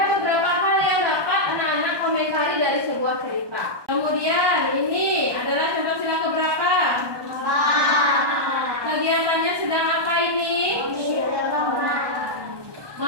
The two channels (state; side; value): late; left; 1.2 ms